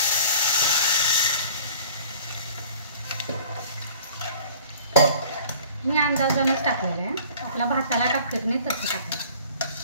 मी अंदाजानंच टाकलेलं आहे. आपला भाताला टाकत नाही तसं टाकायचं.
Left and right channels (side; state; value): both; inverted; correlation -0.47